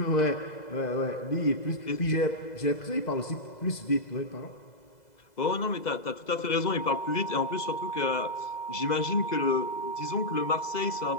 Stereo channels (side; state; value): right; late; 2.0 ms